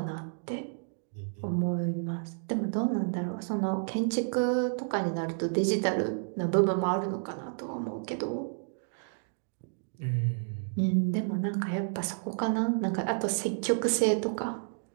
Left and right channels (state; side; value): silent; left; digital silence